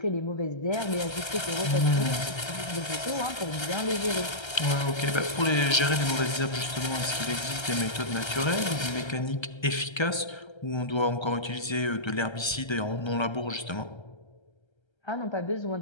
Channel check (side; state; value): right; late; 1.3 ms